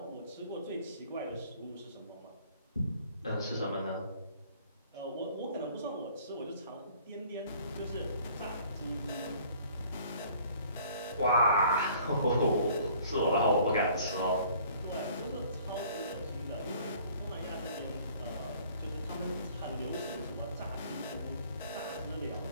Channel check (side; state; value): both; inverted; correlation -0.54